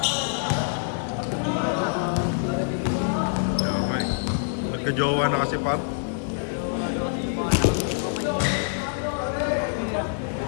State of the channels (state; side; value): silent; right; digital silence